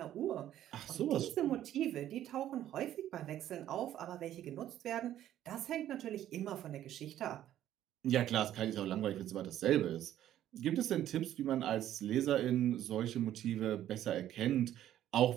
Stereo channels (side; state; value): left; quieter; 12.0 dB